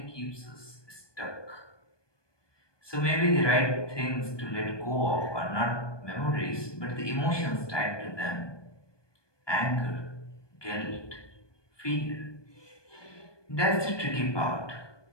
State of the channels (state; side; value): late; right; 1.2 ms